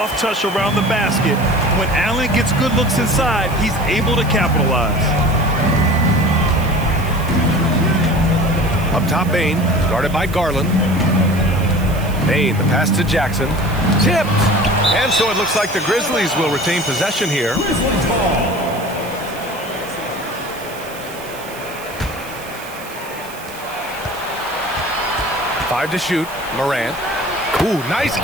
touch around the basket, when Allen gets good looks inside, he's able to capitalize. Up top, Bane. Guarded by Garland. Bane, the pass to Jackson. Tipped. And so it looks like the Grizzlies will retain possession here. 5 to shoot. Morant. Ooh, nice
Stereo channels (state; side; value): noise; right; hiss, 17 dB below the sound